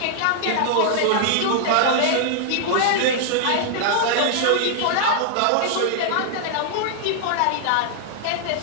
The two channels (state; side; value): different; both; correlation -0.01